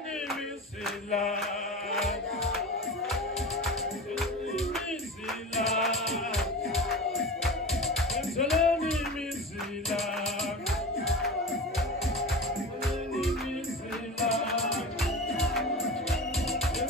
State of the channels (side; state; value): both; normal; correlation 0.31